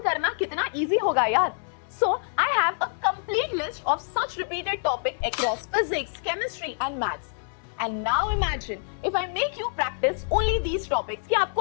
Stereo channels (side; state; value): right; silent; 61 dB below the other